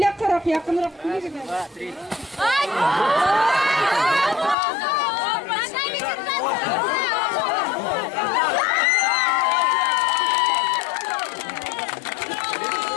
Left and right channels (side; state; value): right; drops out; at 4.5 s